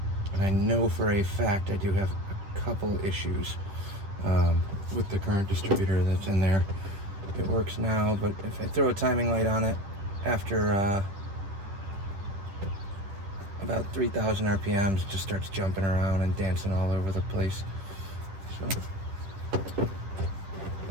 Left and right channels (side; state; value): left; late; 10 ms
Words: I know for a fact I do have a couple issues with the current distributor that's in there. It works now, but if I throw a timing light on it after about 3,000 RPMs, it just starts jumping around and dancing all over the place. So